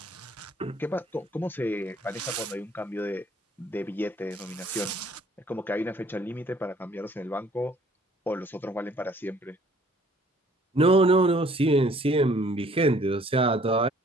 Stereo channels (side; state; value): both; normal; correlation 0.59